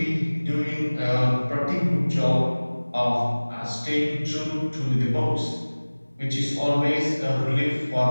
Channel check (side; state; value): both; inverted; correlation -1.00